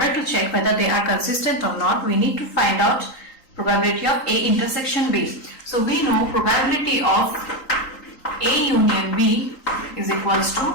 to check whether they are consistent or not, we need to find out probability of A intersection B. So we know probability of A union B is equals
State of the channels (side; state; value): right; late; 3.8 ms